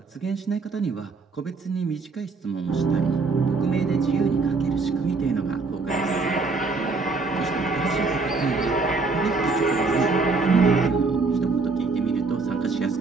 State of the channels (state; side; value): quieter; left; 4.1 dB